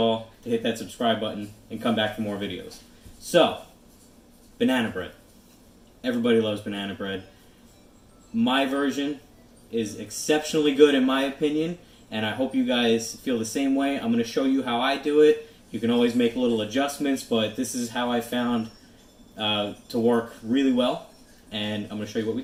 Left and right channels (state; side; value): identical; both; correlation 1.00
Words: to hit that subscribe button and come back for more videos. So, banana bread. Everybody loves banana bread. My version is exceptionally good in my opinion, and I hope you guys feel the same way. I'm going to show you how I do it. You can always make little adjustments, but this is how I found to work really well, and I'm going to show you what we